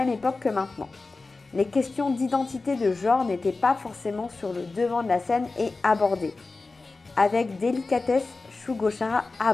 époque que maintenant. Les questions d'identité de genre n'étaient pas forcément sur le devant de la scène et abordées. Avec délicatesse, Shugo Chara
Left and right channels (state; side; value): quieter; right; 3.7 dB